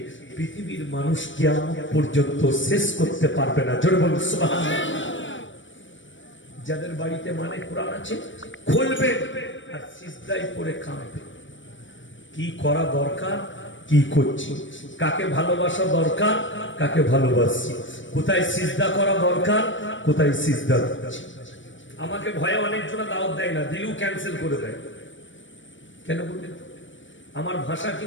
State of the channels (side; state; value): right; late; 0.56 ms